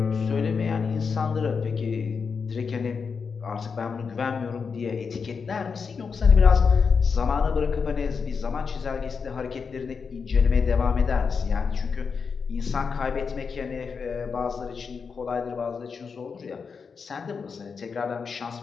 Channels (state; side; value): quieter; right; 5.6 dB